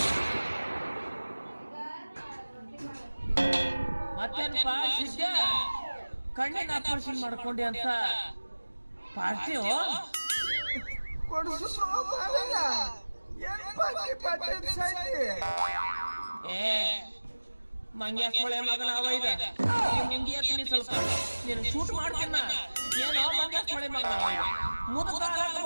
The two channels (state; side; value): inverted; both; correlation -1.00